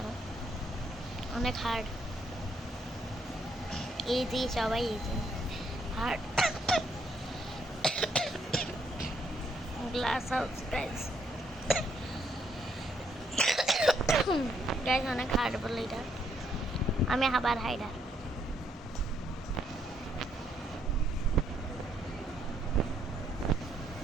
অনেক হার্ড। ইজি, সবাই easy. Hard glass house guys, guys অনেক হার্ড বলে এটা। আমি আবার হাইডার।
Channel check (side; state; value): both; normal; correlation 0.72